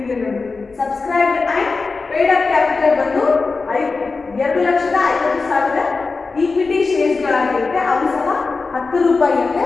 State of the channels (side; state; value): right; quieter; 4.1 dB